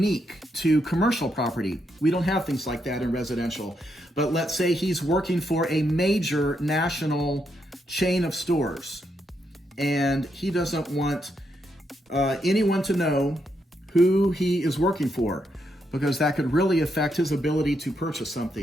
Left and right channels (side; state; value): both; normal; correlation 0.80